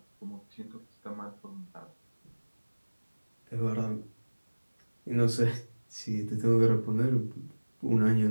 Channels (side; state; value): both; inverted; correlation -1.00